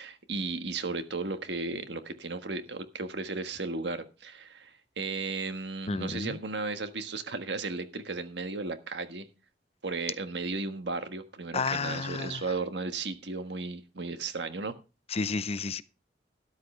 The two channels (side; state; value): both; normal; correlation 0.14